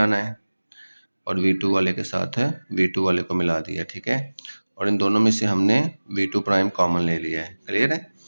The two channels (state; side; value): inverted; both; correlation -1.00